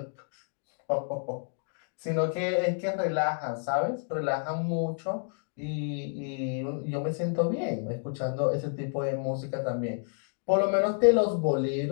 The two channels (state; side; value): silent; right; 58 dB below the other